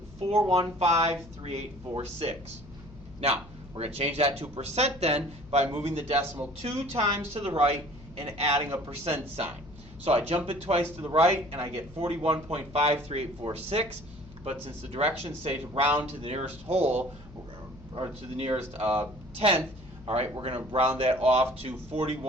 Now, we're going to change that to percent then by moving the decimal 2 times to the right and adding a percent sign. So I jump it twice to the right and I get 41.53846. But since the directions say to round to the nearest whole, or to the nearest tenth, all right, we're going to round that off to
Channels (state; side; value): noise; left; hum, 20 dB below the sound